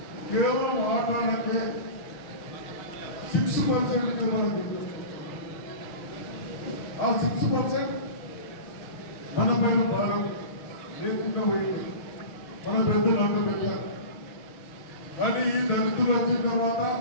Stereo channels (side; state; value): right; late; 6.7 ms